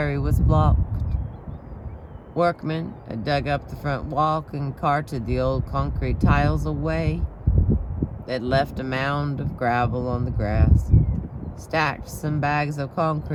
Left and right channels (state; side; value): identical; both; correlation 1.00